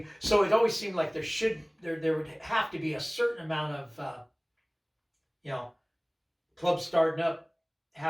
So it always seemed like there would have to be a certain amount of, you know, clubs starting up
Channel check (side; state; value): both; identical; correlation 1.00